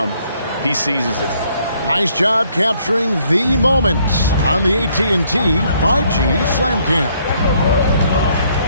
he seizes it. Nice job capturing the moments on the AT&T 5G Slam Cam.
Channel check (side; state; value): both; inverted; correlation -0.67